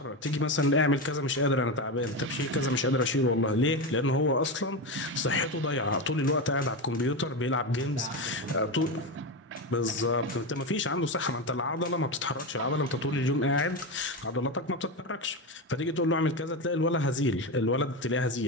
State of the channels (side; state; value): both; normal; correlation 0.16